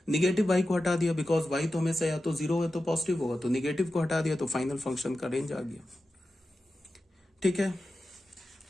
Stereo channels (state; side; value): normal; both; correlation 0.92